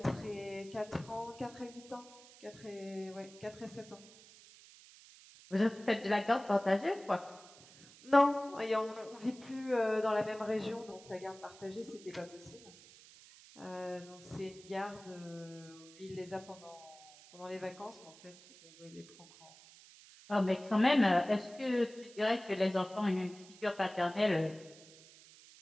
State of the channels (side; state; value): right; noise; hiss, 21 dB below the sound